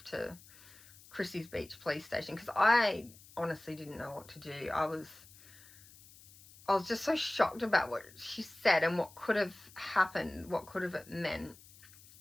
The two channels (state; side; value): noise; left; hiss, 22 dB below the sound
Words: to Christie's Beach police station because I honestly didn't know what to do. I was just so shocked about what she said and what could have happened, what could have it meant.